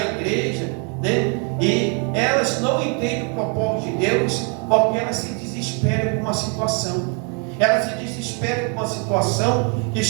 né? E elas não entendem o propósito de Deus, porque elas se desesperam com uma situação. Elas se desesperam com uma situação que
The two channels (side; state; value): left; quieter; 37.6 dB